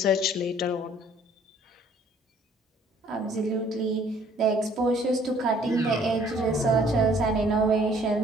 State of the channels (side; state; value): both; normal; correlation 0.59